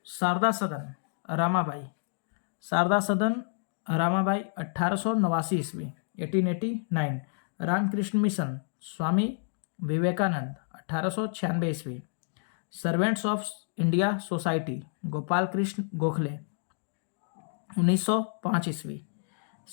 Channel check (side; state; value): right; silent; digital silence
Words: शारदा सदन रामाबाई, शारदा सदन रामाबाई, 1889 ईस्वी 1889। रामकृष्ण मिशन, स्वामी विवेकानंद, 1896 ईस्वी। Servants of India society, Gopal Krishna Gokhale, 1905 ईस्वी।